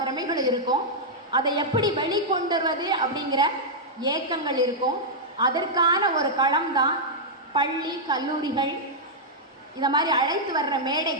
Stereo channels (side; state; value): both; normal; correlation -0.07